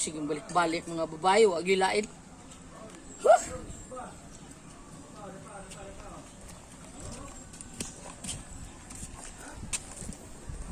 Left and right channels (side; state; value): both; identical; correlation 1.00